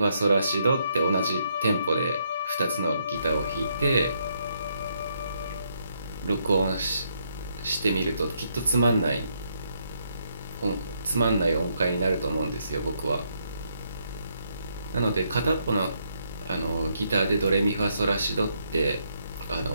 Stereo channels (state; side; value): inverted; both; correlation -0.75